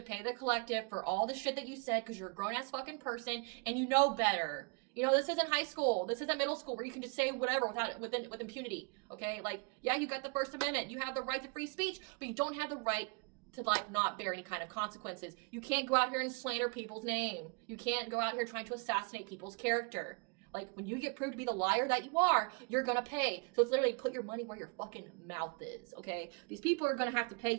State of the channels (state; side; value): quieter; left; 32.7 dB